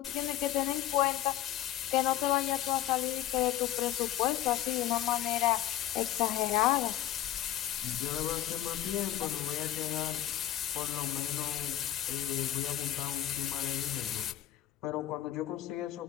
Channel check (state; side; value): quieter; right; 12.9 dB